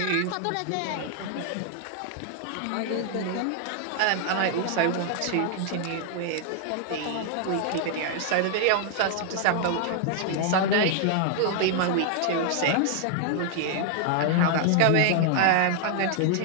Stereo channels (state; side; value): different; both; correlation 0.00